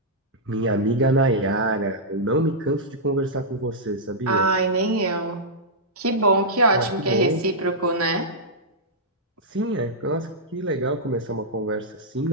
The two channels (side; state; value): both; normal; correlation -0.10